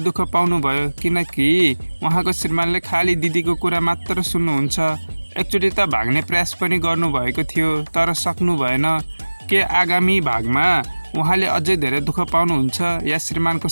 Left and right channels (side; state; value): both; inverted; correlation -1.00